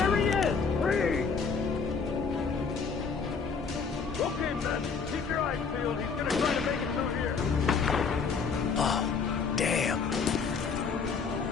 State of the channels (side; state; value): right; quieter; 5.4 dB